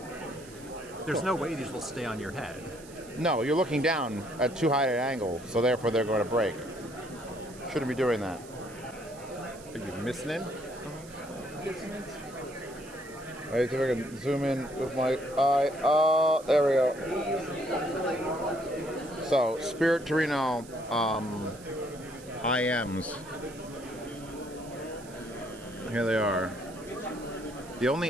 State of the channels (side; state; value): right; noise; hiss, 20 dB below the sound